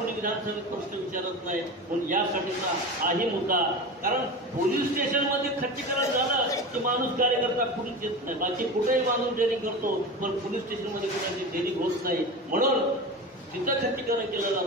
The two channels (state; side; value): normal; both; correlation 0.28